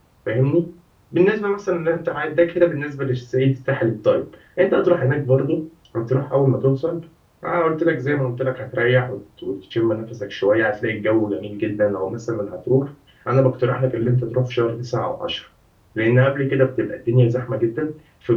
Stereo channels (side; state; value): both; identical; correlation 1.00